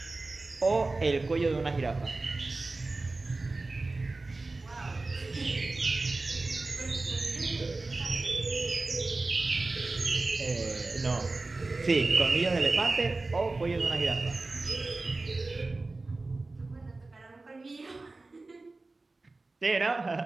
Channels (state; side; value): quieter; left; 3.3 dB